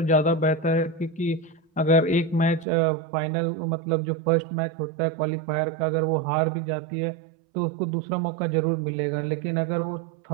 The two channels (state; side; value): drops out; left; at 2.7 s